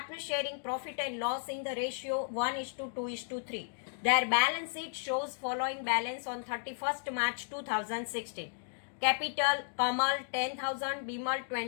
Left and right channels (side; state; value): right; silent; digital silence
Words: sharing profit and loss in the ratio 1:2:3. Their balance sheet shows following balance on 31st March 2016. Capital, Kamal 10,000, Bimal